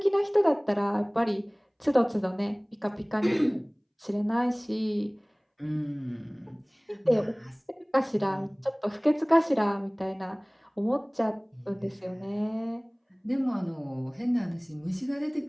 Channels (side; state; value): both; identical; correlation 1.00